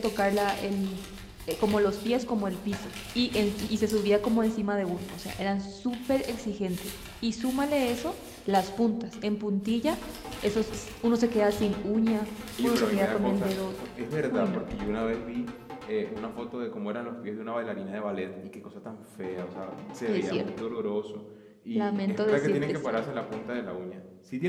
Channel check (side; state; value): both; identical; correlation 1.00